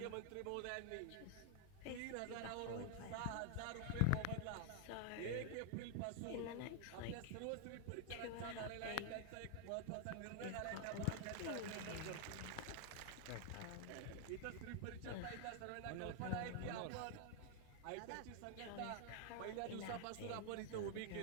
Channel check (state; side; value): different; both; correlation 0.00